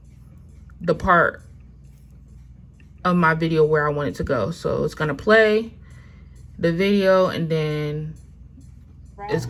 the part of my video where I want it to go. So it's gonna play the video, and then it's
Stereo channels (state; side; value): identical; both; correlation 1.00